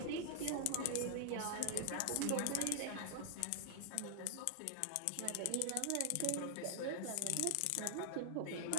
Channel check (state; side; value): different; both; correlation 0.00